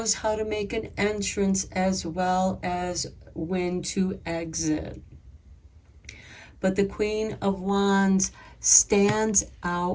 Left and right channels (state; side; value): identical; both; correlation 1.00